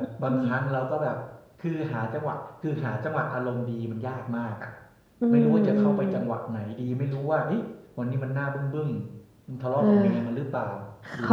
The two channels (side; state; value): both; identical; correlation 1.00